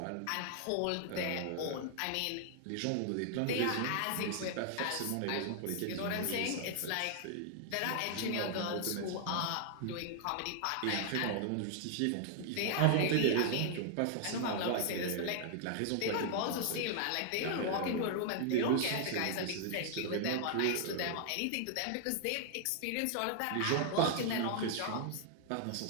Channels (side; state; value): both; different; correlation 0.00